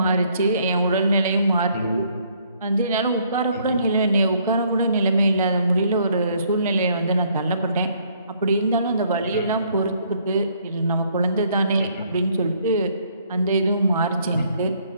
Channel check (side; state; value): both; inverted; correlation -0.66